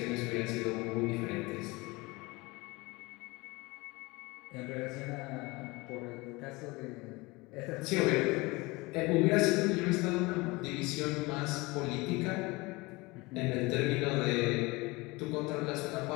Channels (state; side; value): quieter; right; 23.6 dB